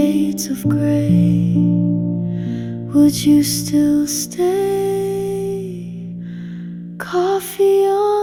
of gray, would you still stay? Coffee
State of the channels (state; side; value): identical; both; correlation 1.00